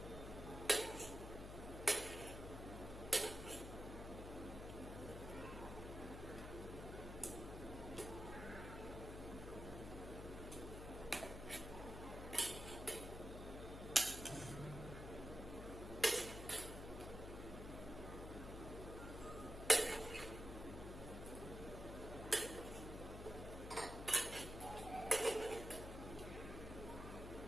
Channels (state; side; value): noise; left; hum, 8 dB below the sound